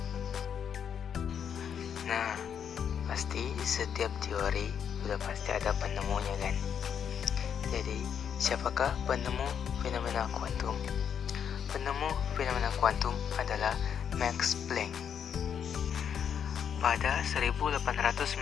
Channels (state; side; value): quieter; right; 8.0 dB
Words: Nah, pasti setiap teori sudah pasti ada penemunya kan? Jadi, siapakah penemu fenomena kuantum? Penemu fenomena kuantum adalah Max Planck. Pada 1899,